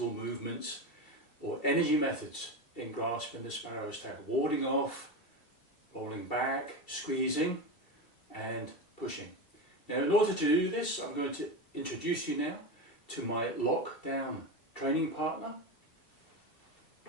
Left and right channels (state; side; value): late; right; 2.7 ms